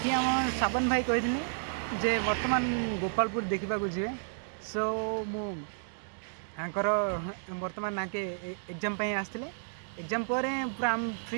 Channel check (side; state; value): left; silent; digital silence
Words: ये आम साबन भाई कही जे वर्तमान गोपालपुर देखा जी। सो मुझर वर्तमान नाके एग्जाम आसते एग्जाम पर पूरा आम